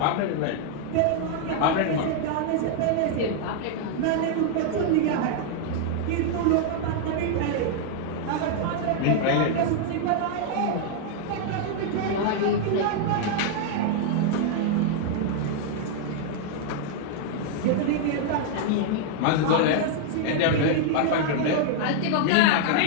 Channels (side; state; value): both; different; correlation 0.00